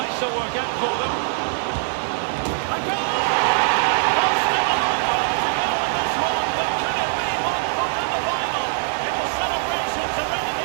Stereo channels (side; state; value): left; silent; 64 dB below the other